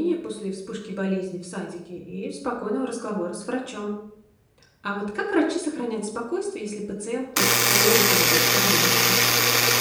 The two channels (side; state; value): both; identical; correlation 1.00